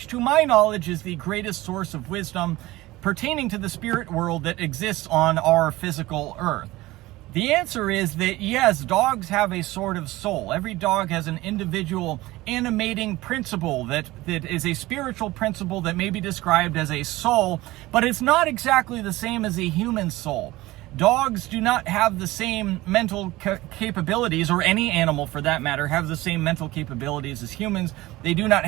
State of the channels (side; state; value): left; quieter; 18.6 dB